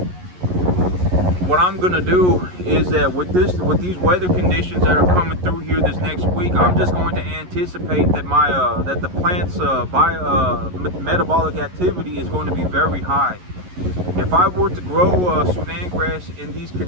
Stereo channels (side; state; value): left; late; 11 ms